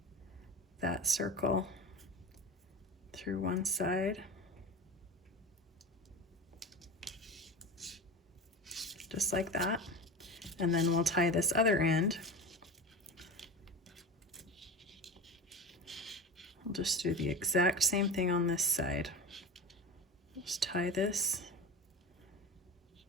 that circle through one side. Just like that. And then we'll tie this other end. We'll just do the exact same thing on this side. Just tie this.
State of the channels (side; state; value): both; normal; correlation 0.28